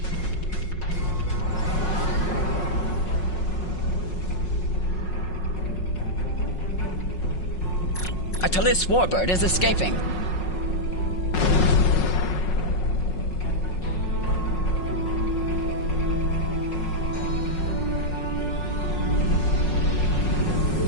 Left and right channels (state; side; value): late; right; 5.5 ms